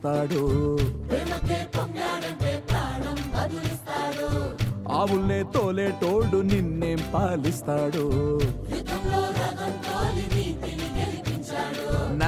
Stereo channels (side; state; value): both; identical; correlation 1.00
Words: ఆవుల్నే తోలేటోడు నిన్నేం పాలిస్తాడు